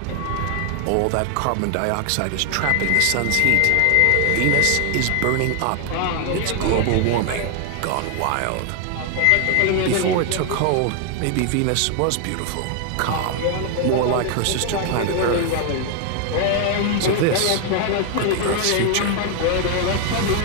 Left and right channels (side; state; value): both; different; correlation 0.00